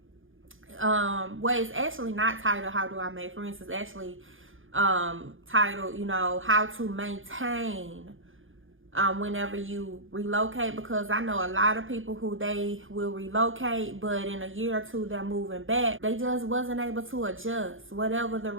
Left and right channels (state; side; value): late; left; 0.58 ms